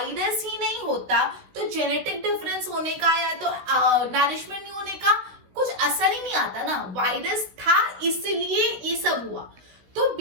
ही नहीं होता तो जेनेटिक डिफरेंस होने का या तो नरिशमेंट नहीं होने का कुछ असर ही नहीं आता ना। वायरस था इसलिए ये सब हुआ। तो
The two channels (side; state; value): left; late; 16 ms